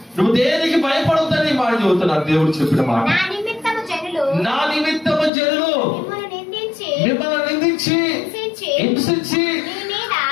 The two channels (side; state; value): right; drops out; at 5.3 s